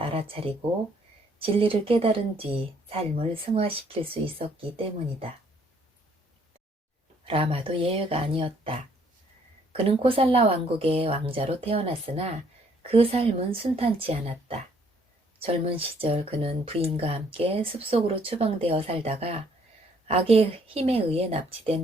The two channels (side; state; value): both; normal; correlation 0.65